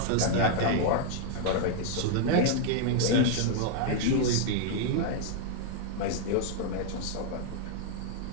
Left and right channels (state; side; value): different; both; correlation -0.01